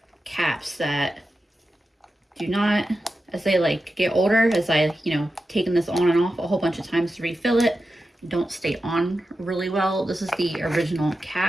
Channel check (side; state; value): both; normal; correlation 0.91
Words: caps that do not, as they get older, as I, taken this on and off a whole bunch of times to refill it, don't stay on really well. This is the original